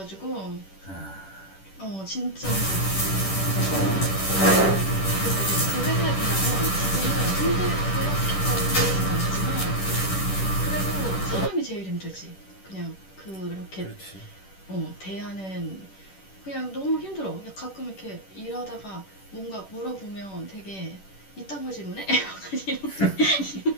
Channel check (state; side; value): late; right; 10 ms